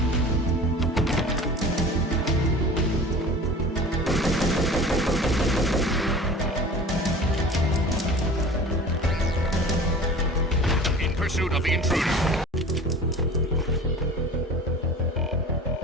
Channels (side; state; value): both; normal; correlation 0.40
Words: Pursuit of the intruder.